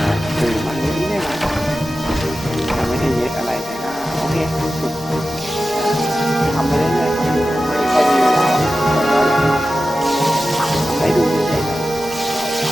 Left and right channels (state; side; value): normal; both; correlation 0.94